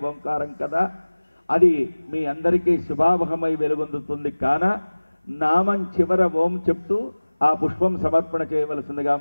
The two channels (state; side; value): inverted; both; correlation -1.00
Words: ఓంకారం కదా, అది మీ అందరికీ శుభావహమై వెలుగొందుతుంది. కాన నామం చివర ఓం చెప్తూ ఆ పుష్పం సమర్పణ చేయవలసిందిగా